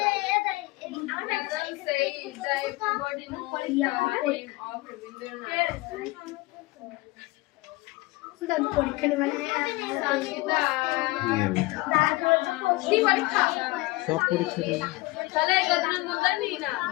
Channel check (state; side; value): quieter; right; 22.0 dB